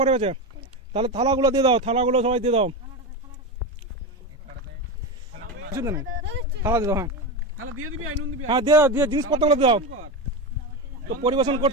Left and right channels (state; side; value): normal; both; correlation 0.18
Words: গেছে? তাহলে থালাগুলো দিয়ে দাও, থালাগুলো সবাই দিয়ে দাও। থালা দিয়ে দাও, হ্যাঁ দিয়ে দাও, দিয়ে জিনিসপত্রগুলো দিয়ে দাও। তো পরিবেশন